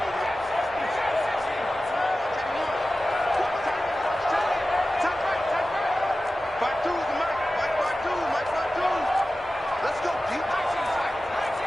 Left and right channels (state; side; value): normal; both; correlation 0.95